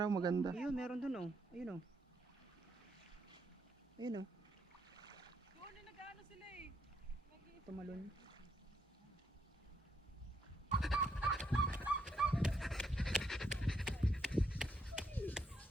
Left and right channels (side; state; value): both; normal; correlation 0.75